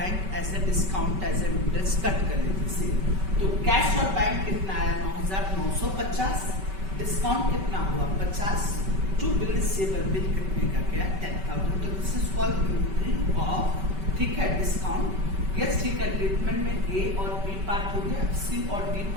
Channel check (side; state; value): left; late; 5.2 ms